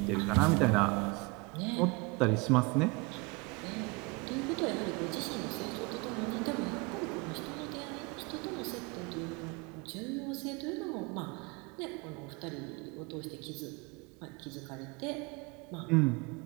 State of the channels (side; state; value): left; quieter; 27.0 dB